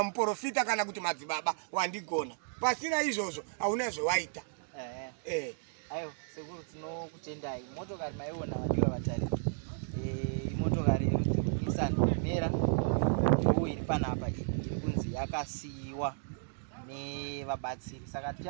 muprofita kana kuti madzibaba, wandigona. Pasina izvozvo hauna zvawaita. Ayo sekuru tinokutendai. Motokari maiona vadiwa vatariri, imotokari yerudzi rweNissan Mera ndo iri panapa, iri kunzi yakasiyiwa nevabatsiri. Saka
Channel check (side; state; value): left; silent; digital silence